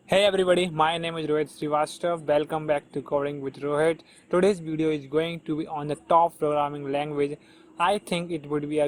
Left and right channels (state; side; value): identical; both; correlation 1.00